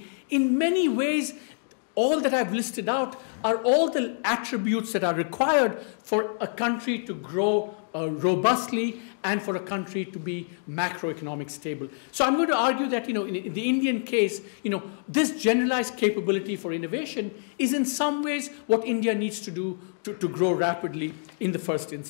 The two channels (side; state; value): right; silent; digital silence